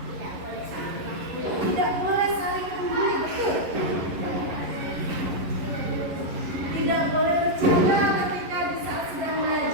Tidak boleh saling membuli, betul? Tidak boleh bercanda ketika di saat sedang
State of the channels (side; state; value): left; late; 11 ms